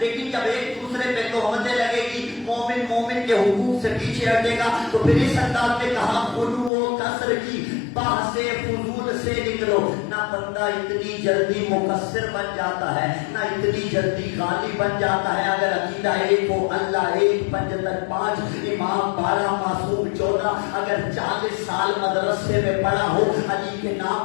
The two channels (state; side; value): drops out; right; at 6.7 s